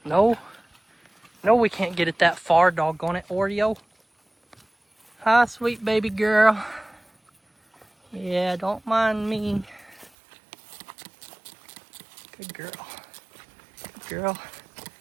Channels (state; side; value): drops out; left; at 10.1 s